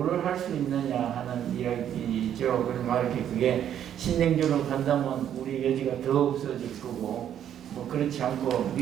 할 수 있느냐 하는 이야기죠. 그러면 이렇게 그게 신냉전으로 간다면 우리 여지가 더 없어질 거고 그렇지 않고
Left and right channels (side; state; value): left; quieter; 10.0 dB